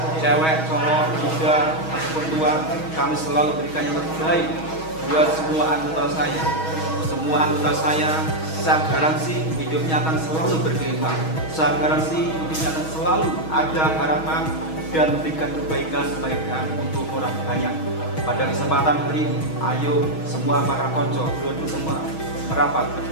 cewek, cowok, muda, ataupun tua, kami selalu berikan yang terbaik buat semua anggota saya. Semua anggota saya garansi hidupnya akan selalu berkembang. Saya garansi hidupnya akan selalu ada harapan dan memberikan kebaikan-kebaikan untuk orang banyak. Pada kesempatan hari ini, ayo semua para konco, dulu semua merapat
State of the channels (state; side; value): late; right; 6.3 ms